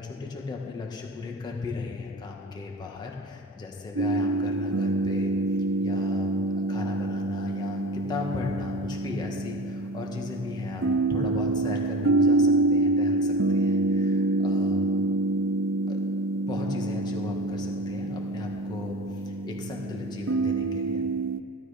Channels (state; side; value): normal; both; correlation 0.33